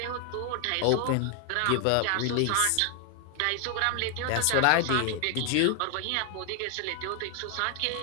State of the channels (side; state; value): both; different; correlation 0.00